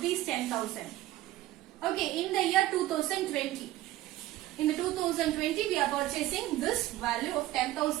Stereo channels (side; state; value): left; quieter; 15.3 dB